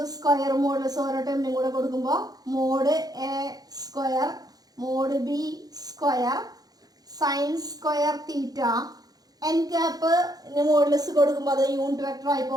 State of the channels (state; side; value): late; left; 0.19 ms